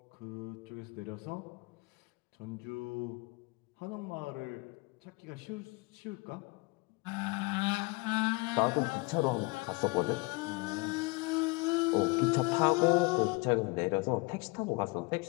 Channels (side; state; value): right; quieter; 27.5 dB